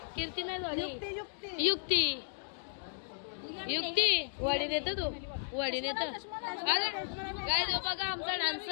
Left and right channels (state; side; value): silent; right; digital silence